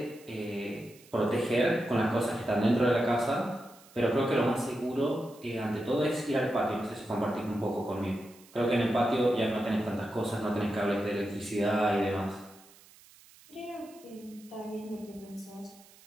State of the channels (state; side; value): noise; right; hiss, 24 dB below the sound